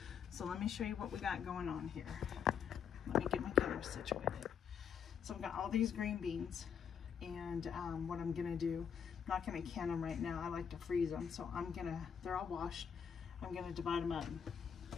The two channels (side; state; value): right; quieter; 7.6 dB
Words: So let me show you what we got going on here. Let me get my camera situated. So I've got all these green beans, and what I'm gonna do, I'm not gonna can them right now. I like to freeze them. So they're all washed. I'm gonna divide them up